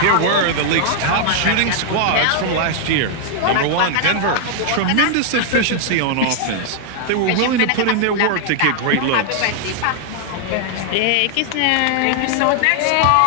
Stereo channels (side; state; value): both; different; correlation 0.00